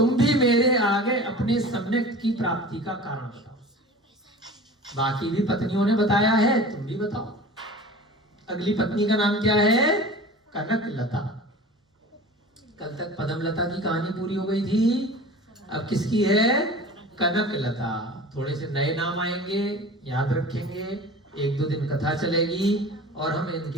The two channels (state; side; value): normal; both; correlation 0.39